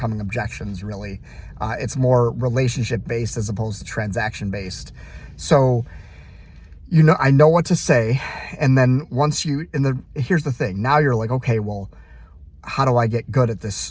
objections, really. It's more relationship based as opposed to transaction based. So, I know what to say. And then here's the thing. Now you're like, okay, well, how do I get good at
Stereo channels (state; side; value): identical; both; correlation 1.00